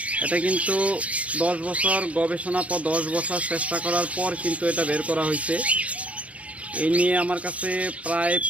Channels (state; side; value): late; left; 0.065 ms